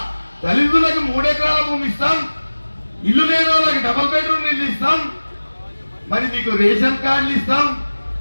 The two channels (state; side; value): inverted; both; correlation -1.00